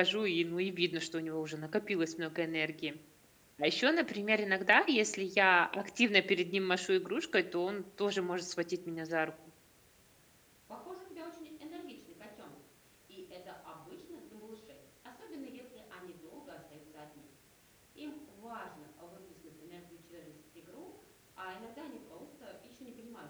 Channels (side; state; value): both; identical; correlation 1.00